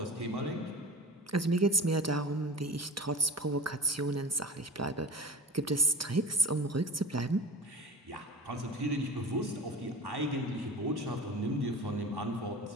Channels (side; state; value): both; normal; correlation 0.35